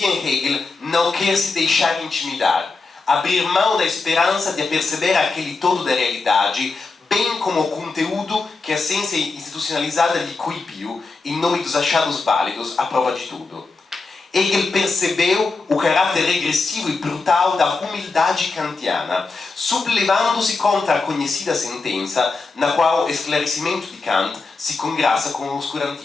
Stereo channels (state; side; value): quieter; right; 4.0 dB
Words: em Hegel não quer se deixar intimidar, abrir mão da esperança de perceber aquele todo da realidade, bem como o conteúdo que a ciência institucionalizada lhe coibiu em nome dos achados válidos à prova de tudo. Hegel percebeu o caráter regressivo e brutal da humildade kantiana, sublevando-se contra a conhecida sentença na qual o esclarecimento de Kant se congraça com o